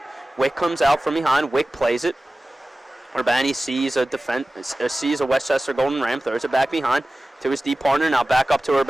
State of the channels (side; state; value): both; normal; correlation 0.97